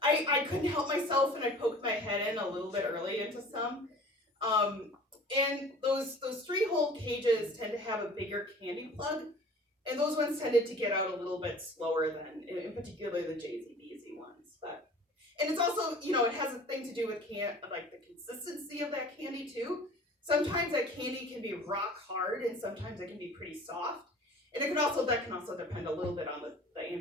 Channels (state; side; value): normal; both; correlation 0.45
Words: couldn't help myself and I poked my head in a little bit early into some. And those 3-hole cages tend to have a bigger candy plug, and those ones tended to get out a little bit slower than, in particular, the JZBZ ones. And it's also, it has a thing to do with the consistency of that candy too. Sometimes that candy can be rock hard, and sometimes it can be pretty soft. And that can also depend a little bit on the